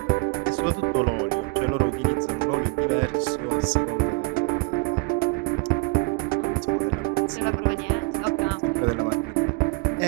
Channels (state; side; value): quieter; left; 26.6 dB